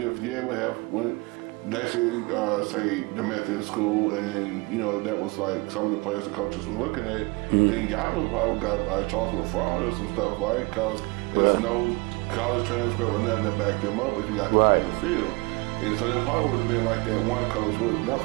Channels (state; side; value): quieter; left; 26.2 dB